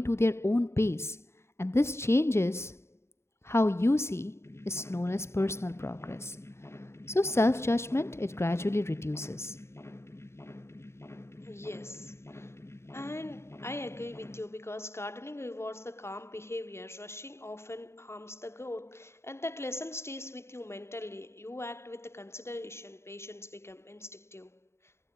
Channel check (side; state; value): right; late; 0.13 ms